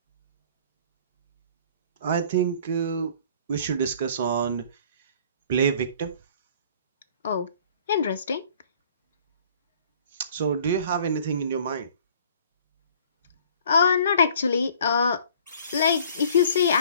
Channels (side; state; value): both; inverted; correlation -0.53